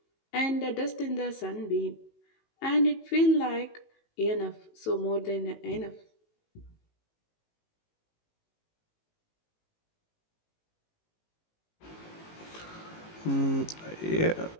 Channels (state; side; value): late; right; 18 ms